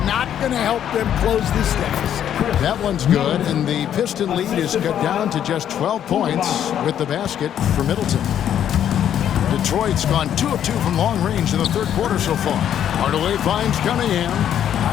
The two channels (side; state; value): right; quieter; 10.0 dB